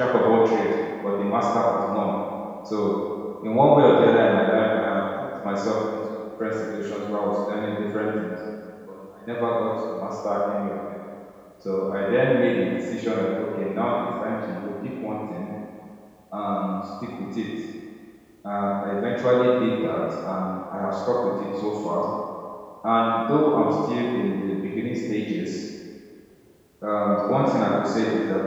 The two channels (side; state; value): both; identical; correlation 1.00